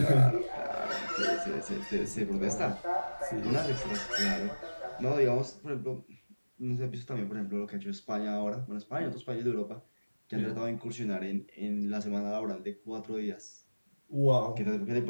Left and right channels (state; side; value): inverted; both; correlation -1.00